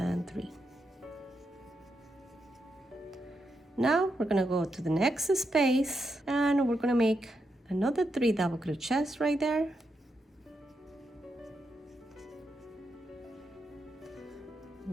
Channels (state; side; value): normal; both; correlation 0.84